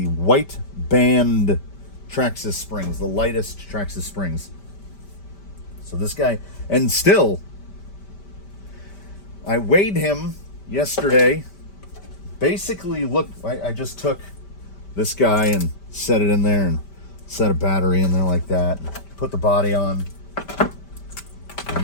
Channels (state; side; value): late; right; 5.1 ms